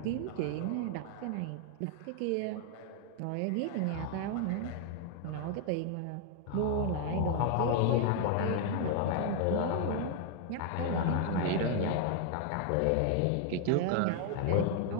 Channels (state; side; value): different; both; correlation 0.00